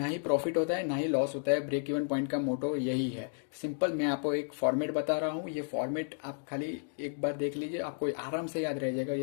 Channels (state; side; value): silent; right; digital silence